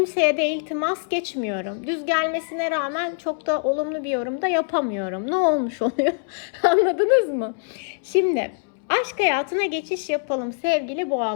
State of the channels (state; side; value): silent; right; 63 dB below the other